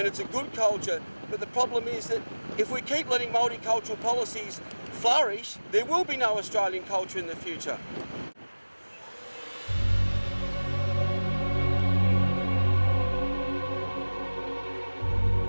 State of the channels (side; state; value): both; inverted; correlation -1.00